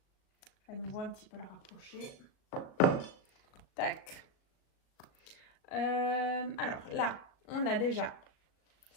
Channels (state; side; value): late; right; 37 ms